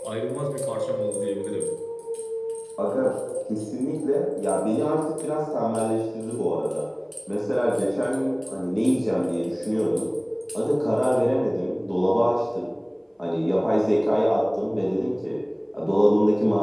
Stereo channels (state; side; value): identical; both; correlation 1.00